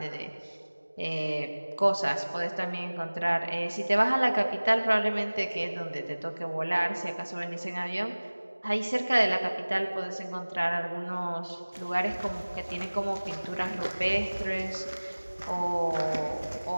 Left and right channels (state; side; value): inverted; both; correlation -1.00